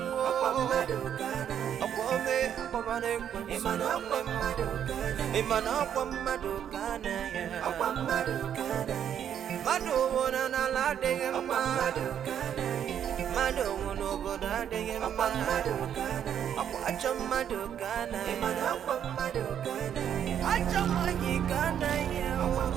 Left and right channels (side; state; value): left; quieter; 9.2 dB